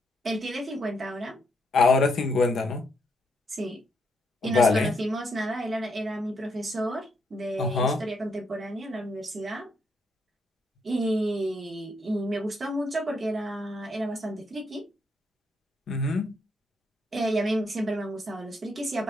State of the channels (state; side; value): normal; both; correlation 0.76